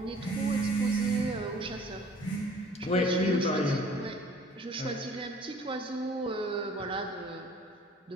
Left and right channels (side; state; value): both; normal; correlation 0.52